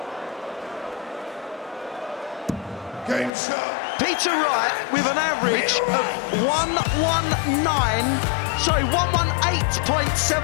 Game shot. Peter Wright with an average of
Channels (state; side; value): drops out; right; at 3.3 s